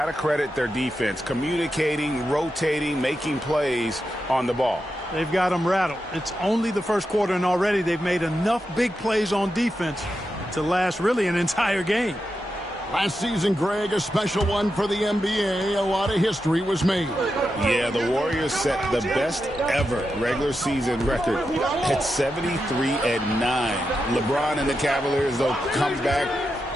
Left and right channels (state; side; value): normal; both; correlation 0.88